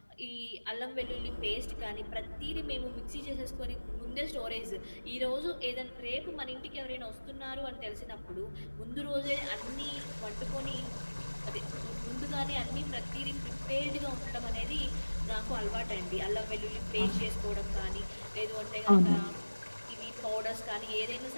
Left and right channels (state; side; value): inverted; both; correlation -1.00